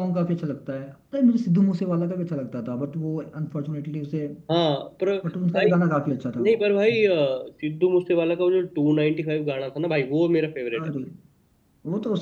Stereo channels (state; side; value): identical; both; correlation 1.00